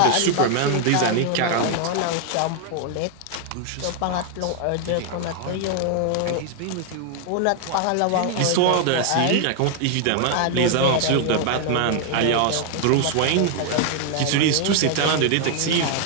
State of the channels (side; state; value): both; different; correlation 0.00